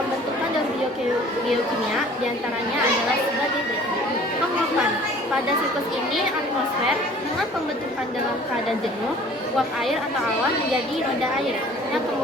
daur biokimia diantaranya adalah sebagai berikut. Penguapan. Pada siklus ini, atmosfer dengan pembentukan dalam keadaan jenuh, uap air atau awan menjadi roda air yang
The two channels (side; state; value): both; normal; correlation 0.50